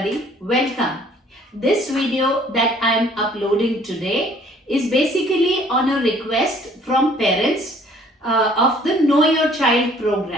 welcome. This video that I am uploading today is basically on a request from parents of the Know Your Child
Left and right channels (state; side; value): normal; both; correlation 0.57